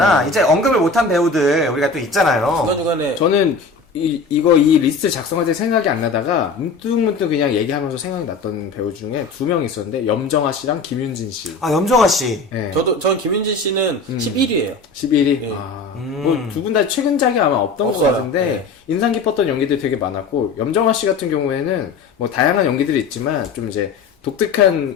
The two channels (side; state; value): right; quieter; 4.2 dB